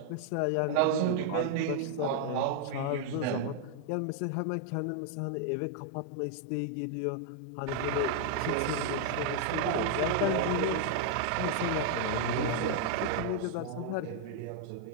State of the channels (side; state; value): both; different; correlation 0.00